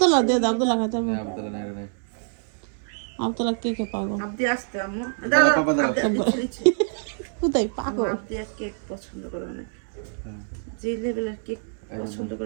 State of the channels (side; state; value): left; silent; 61 dB below the other